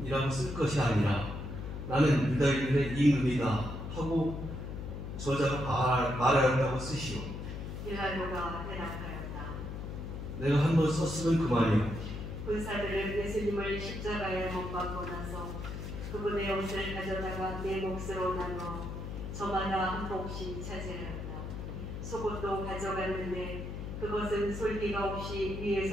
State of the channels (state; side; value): noise; left; hum, 7 dB below the sound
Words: 쓸 것이 아니라 나는 유다인들의 임금이다 하고 저자가 말하였다고 쓰시오. 빌라도가 대답하였다. 내가 한 번 썼으면 그만이요. 군사들은 예수님을 십자가에 못 박고 나서 그분의 옷을 가져다가 네 몫으로 나눠 저마다 한 몫씩 차지하였다. 속옷도 가져갔는데 그것은 솔기가 없이